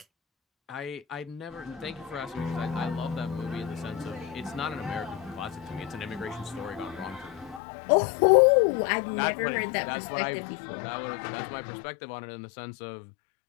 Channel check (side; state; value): right; drops out; at 7.6 s